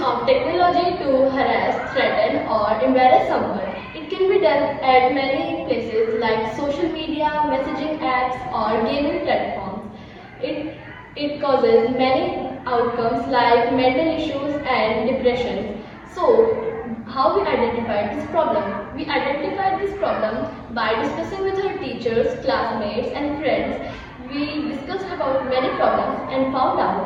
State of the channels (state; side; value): identical; both; correlation 1.00